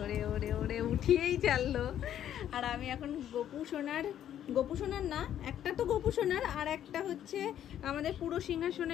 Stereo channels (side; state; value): right; quieter; 10.7 dB